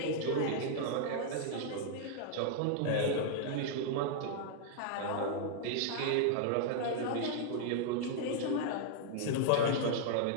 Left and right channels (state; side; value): different; both; correlation -0.01